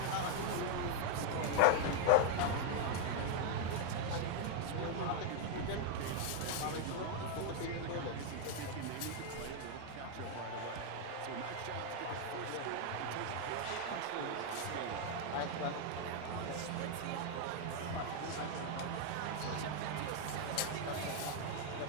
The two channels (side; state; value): both; different; correlation 0.00